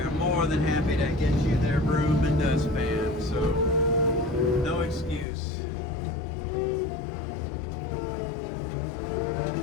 more than happy to get you their broom and dustpan, so no excuse.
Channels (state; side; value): drops out; right; at 5.2 s